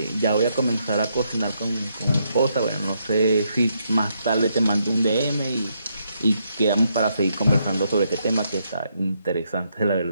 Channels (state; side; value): inverted; both; correlation -0.77